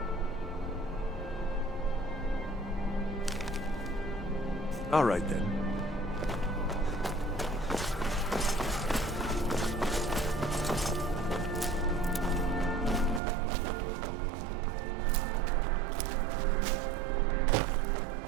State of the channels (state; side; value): drops out; left; at 13.2 s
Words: All right then.